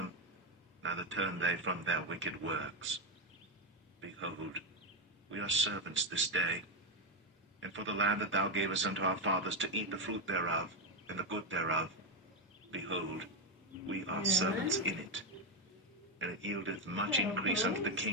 neither turned they from their wicked works. Behold, we are servants this day, and for the land that thou gavest unto our fathers to eat the fruit thereof, and the good thereof, behold, we are servants in it. And it yieldeth much increase unto the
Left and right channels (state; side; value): normal; both; correlation 0.06